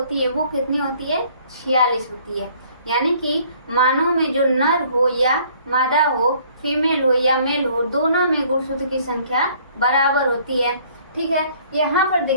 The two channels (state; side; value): inverted; both; correlation -0.58